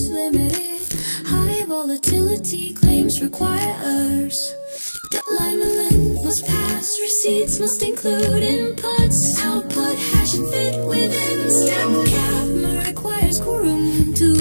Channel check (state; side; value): inverted; both; correlation -1.00